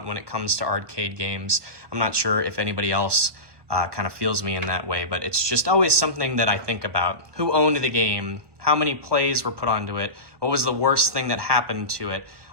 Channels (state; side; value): late; left; 1.2 ms